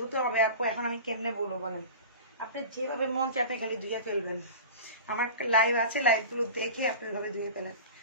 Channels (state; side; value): inverted; both; correlation -0.34